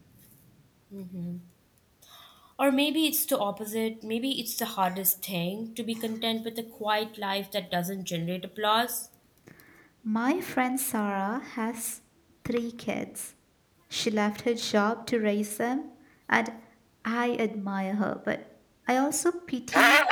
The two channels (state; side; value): identical; both; correlation 1.00